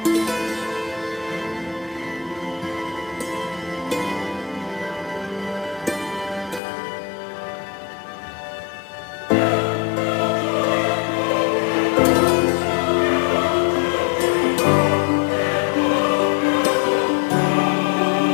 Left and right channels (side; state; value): right; drops out; at 6.6 s